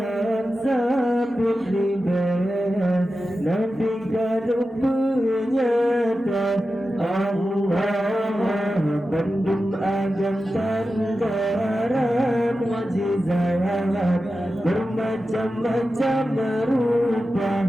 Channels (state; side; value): normal; both; correlation 0.92